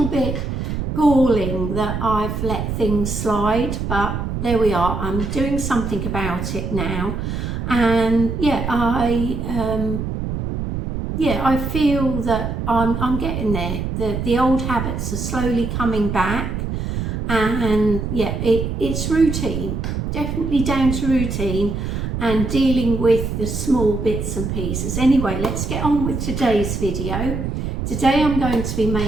bit galling that I've let things slide, but there we are. I'm doing something about it now, and I feel that I'm getting there. The old habits are slowly coming back, and it's routine, definitely down to routine and dealing with the small bits and pieces. Anyway, let's get on with today's video. Today I'm going to be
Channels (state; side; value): noise; right; rumble, 3 dB below the sound